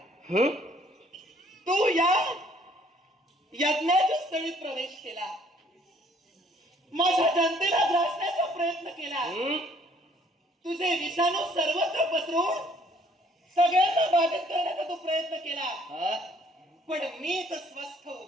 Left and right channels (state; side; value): normal; both; correlation 0.61